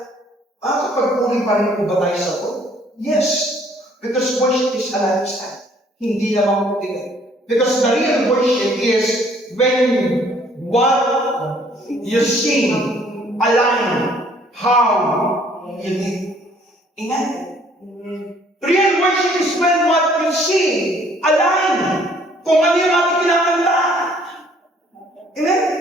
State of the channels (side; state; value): both; normal; correlation 0.60